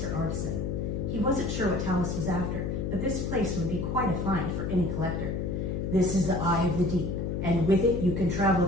artisan. He wasn't sure what Talus was after, but this place would be quite a find for any collector. This is the eye of the deep, and with it you can travel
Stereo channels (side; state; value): left; noise; hum, 2 dB below the sound